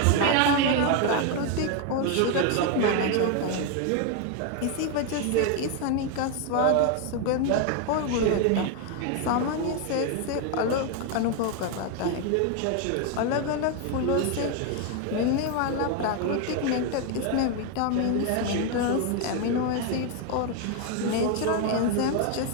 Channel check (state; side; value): different; both; correlation 0.01